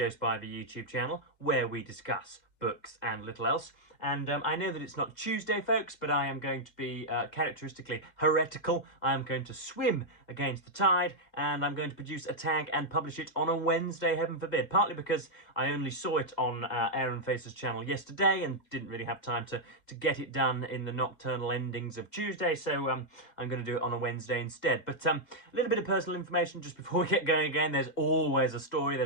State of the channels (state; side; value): late; right; 2.1 ms